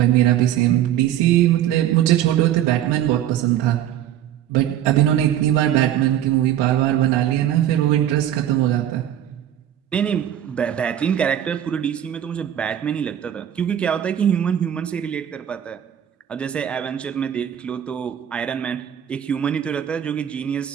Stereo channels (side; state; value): left; quieter; 11.0 dB